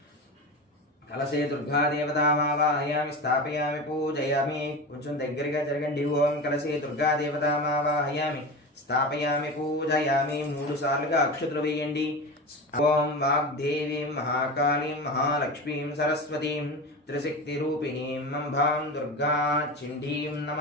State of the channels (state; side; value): normal; both; correlation 0.26